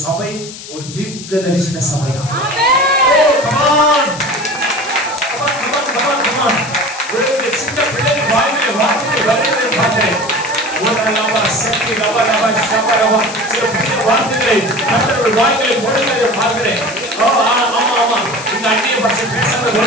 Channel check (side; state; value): left; noise; hiss, 13 dB below the sound